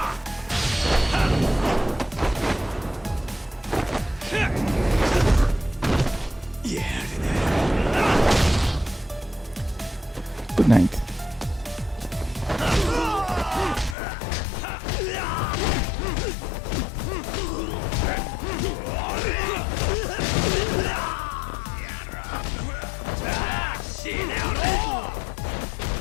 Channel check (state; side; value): drops out; right; at 14.0 s